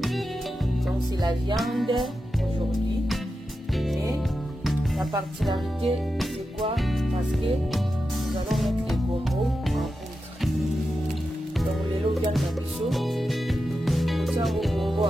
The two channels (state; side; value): normal; both; correlation 0.90